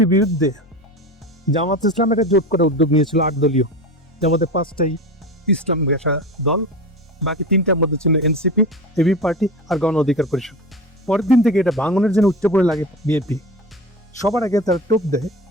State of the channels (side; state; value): both; normal; correlation 0.29